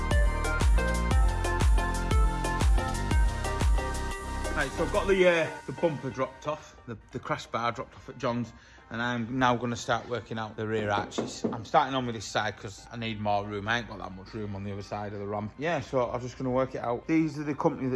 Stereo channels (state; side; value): identical; both; correlation 1.00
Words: Right, so I've got the bumper dropped off, the crash bar dropped off at John's, and I'm now going to start working out the rear arches. I'm starting on with this side because I need more room. I ain't got that much room on the other side of the ramp. Yeah, so I'm just going to work it out. These are the company